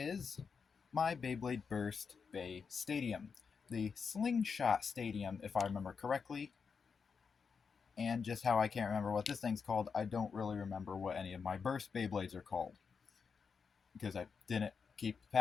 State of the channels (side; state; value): right; quieter; 5.7 dB